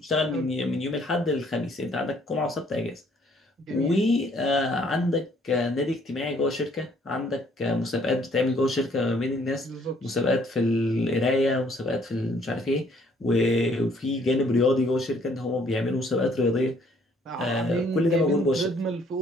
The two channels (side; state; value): both; normal; correlation 0.63